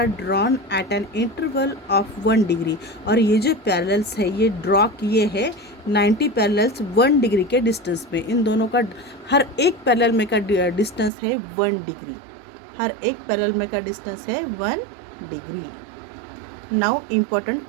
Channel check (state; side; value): drops out; left; at 11.1 s